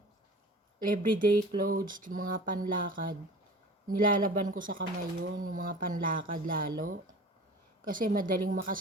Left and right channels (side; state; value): both; normal; correlation 0.40